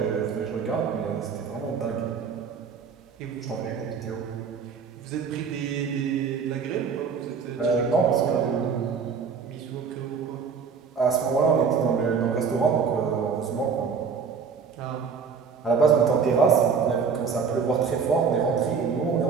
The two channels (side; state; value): left; quieter; 5.9 dB